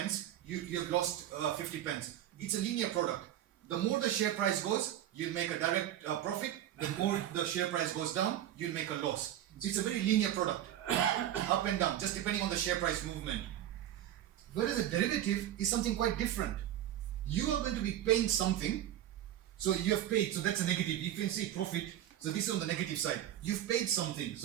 you have lost 50 pence. It's a linear product. The more the share price goes, you'll make a direct profit. The more the share price goes down, you'll make a loss. So it's a very linear product, up and down, just depending on the share price movement. Whereas a derivative is something quite different. You are going to be paying something, so you have paid, so that's a negative. You can see profit, so this is on the negative side. You've paid something,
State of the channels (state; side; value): quieter; left; 12.0 dB